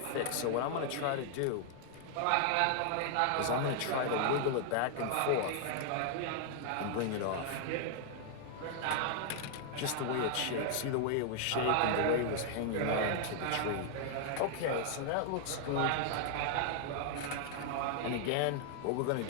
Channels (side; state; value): both; different; correlation 0.00